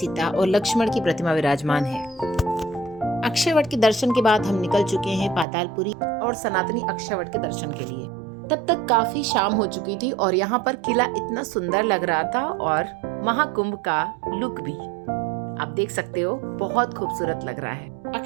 और लक्ष्मण की प्रतिमा विराजमान है। अक्षय के दर्शन के बाद हम निकल चुके हैं पातालपुरी और सनातनी अक्षय के दर्शन के लिए। तब तक काफी शाम हो चुकी थी और यहाँ पर किला इतना सुंदर लग रहा था और महाकुंभ का लुक भी आप देख सकते हो, बहुत खूबसूरत लग रहा है।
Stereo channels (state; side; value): drops out; left; at 5.5 s